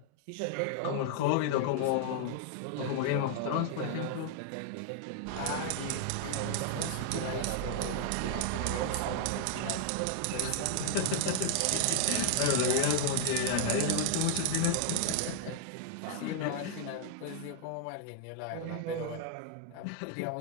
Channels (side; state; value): both; different; correlation 0.00